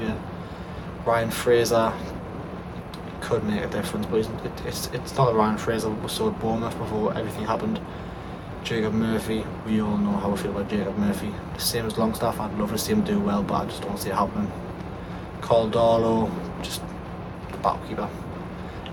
Ryan Fraser could make a difference, but it's not the Ryan Fraser we saw at Bournemouth before everything happened. Jacob Murphy, we all know how I feel about Jacob Murphy. Same as Longstaff, I'd love to see him do well, but I just don't see it happening. Carl Darlow, just the battle keeper.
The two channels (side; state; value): both; identical; correlation 1.00